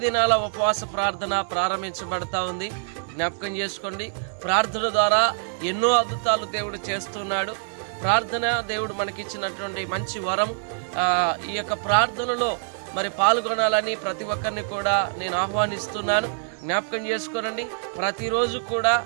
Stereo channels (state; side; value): silent; left; digital silence